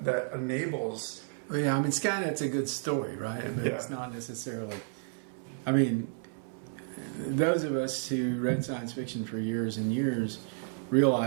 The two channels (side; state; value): left; silent; 57 dB below the other